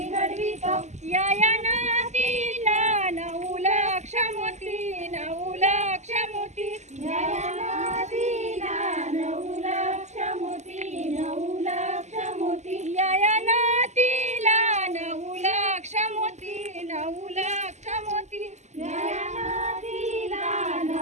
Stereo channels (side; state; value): left; late; 0.33 ms